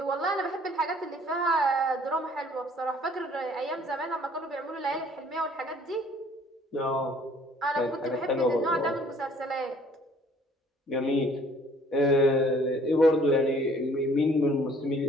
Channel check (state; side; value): normal; both; correlation 0.57